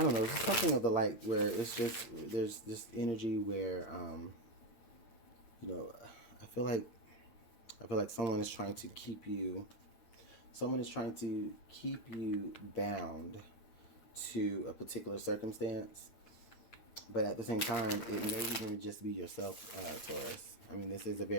don't know, it's something of the like, where it's just, there's this energy where, you know, I feel like someone is trying to keep you bound to a particular circumstance, but at the same time, it may even just be yourself, Taurus. I mean, this is a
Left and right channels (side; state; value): right; late; 9.1 ms